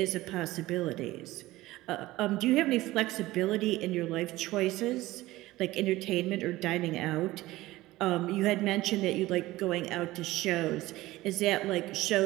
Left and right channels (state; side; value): quieter; left; 17.8 dB